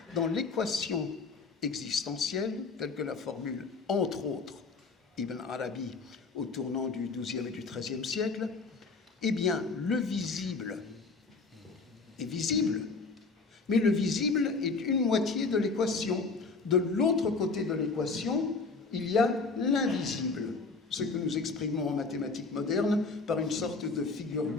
Dans l'équation existentielle, telle que la formule, entre autres, Ibn Arabi au tournant du XIIe et du XIIIe siècle, eh bien, le visible est visible, mais le visible est une moitié de l'équation. De l'autre côté de l'équation, il y a l'invisible, ce que nous exprimons en mathématiques modernes par une sorte de figure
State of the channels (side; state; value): right; quieter; 4.2 dB